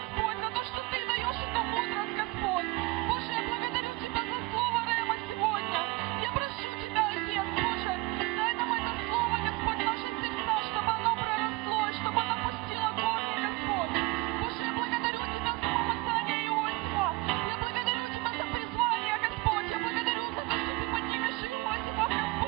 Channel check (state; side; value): quieter; left; 21.6 dB